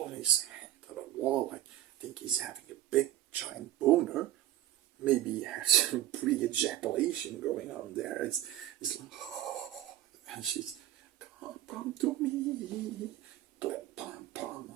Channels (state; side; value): quieter; left; 13.4 dB